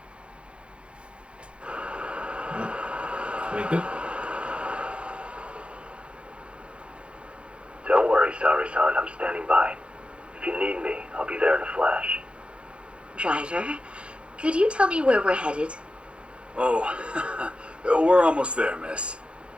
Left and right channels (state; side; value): late; left; 0.058 ms